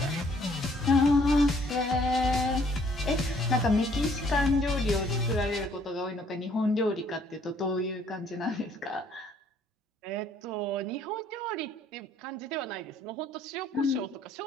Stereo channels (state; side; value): normal; both; correlation 0.63